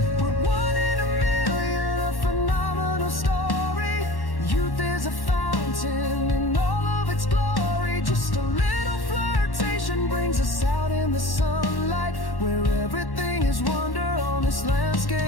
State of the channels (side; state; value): right; late; 1.1 ms